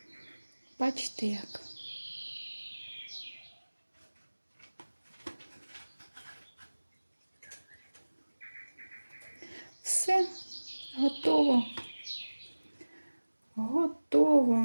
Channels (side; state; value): both; inverted; correlation -1.00